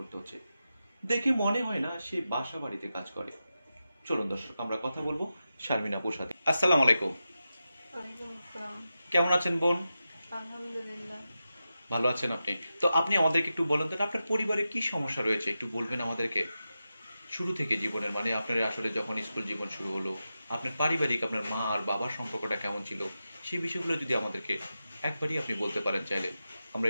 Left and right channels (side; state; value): both; inverted; correlation -0.91